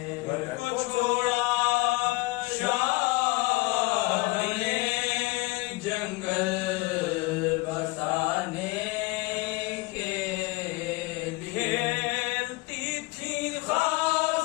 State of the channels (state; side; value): quieter; right; 23.6 dB